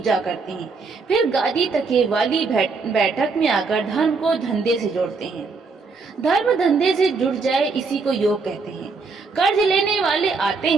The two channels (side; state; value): left; quieter; 4.4 dB